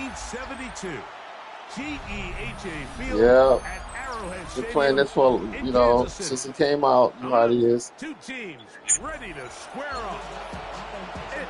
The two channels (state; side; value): identical; both; correlation 1.00